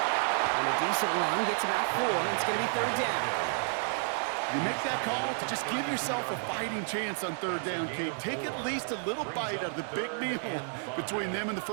And a decent run gets about 4. It's going to be 3rd down. You make that call to just give yourself a fighting chance on 3rd down, Kate. Take at least a little bite out of the big meal between them and the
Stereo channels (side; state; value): left; silent; 57 dB below the other